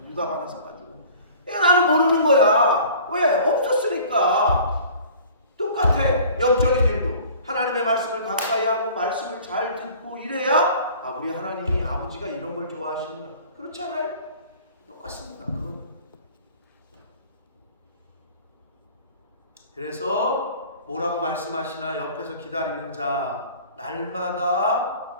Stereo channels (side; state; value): both; inverted; correlation -0.47